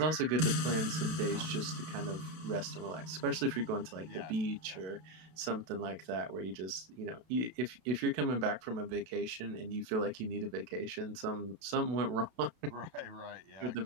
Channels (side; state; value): left; late; 32 ms